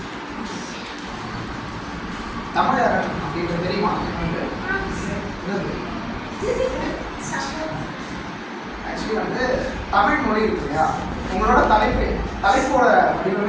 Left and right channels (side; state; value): both; identical; correlation 1.00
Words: தமிழர் அப்படின்றது தெரியுமா? ஆக்சுவலி வந்து தமிழ் மொழி இருக்கு இல்லையா, உங்களோட தலைப்போட